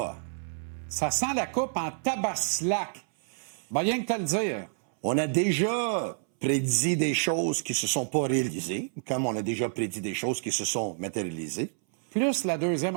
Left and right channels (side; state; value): left; silent; 59 dB below the other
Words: Ça sent la coupe en tabaslac. Ben, rien que te le dire. On a déjà prédit des choses qui se sont pas réalisées, comme on a déjà prédit des choses qui se sont matérialisées. Plus la deuxième